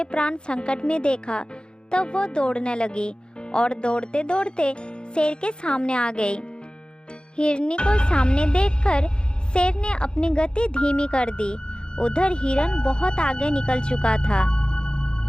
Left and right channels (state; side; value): late; right; 0.050 ms